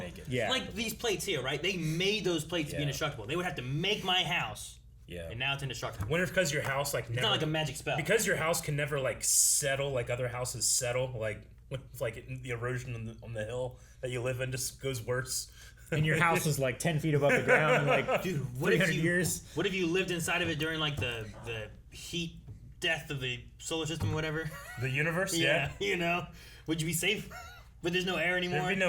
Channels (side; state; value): both; identical; correlation 1.00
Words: it. Yeah. like these plates here, right? They made those plates to be Yeah. indestructible. They would have to make my house, Yeah. and now it's indestructible. Wonder if because your house like never, It's not like a magic spell. because your house can never like settle like other houses settle, like with like the erosion on the hill that you live in just goes worse. And your house is like 10 feet above the ground, like Dude, what if 300 you years. What if you lived inside of it during like the heat death of the solar system or whatever? The universe, Yeah, you know, would you be safe? But there's no air anymore. There'd be